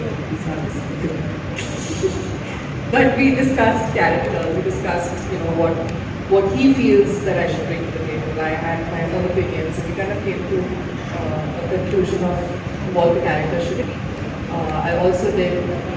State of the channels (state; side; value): identical; both; correlation 1.00